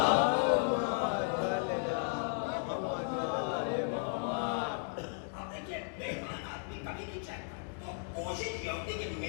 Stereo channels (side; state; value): right; silent; 54 dB below the other